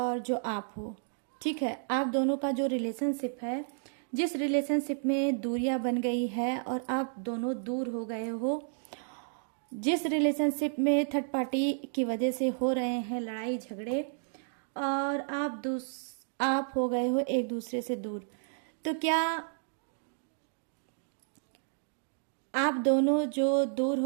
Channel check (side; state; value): left; silent; digital silence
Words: जो आप हो, ठीक है, आप दोनों का जो रिलेशनशिप है, जिस रिलेशनशिप में दूरियां बन गई है और आप दोनों दूर हो गए हो, जिस रिलेशनशिप में थर्ड पार्टी की वजह से हो रहे हैं लड़ाई झगड़े और आप हो गए हो एक दूसरे से दूर, तो क्या आप दोनों जो दूर